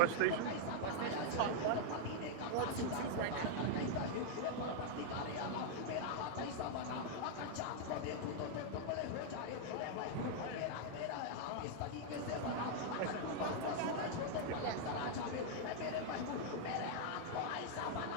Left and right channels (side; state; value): both; different; correlation -0.01